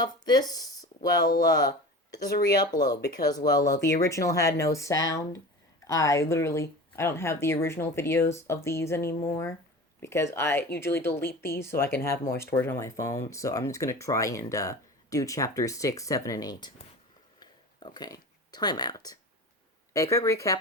this, it's a re-upload because, the original had no sound. I don't have the original videos of these anymore because I usually delete these so I can have more storage on my phone. So I'm just gonna try and do chapters 6, 7, and 8. Okay, timeout. A quick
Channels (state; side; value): normal; both; correlation 0.34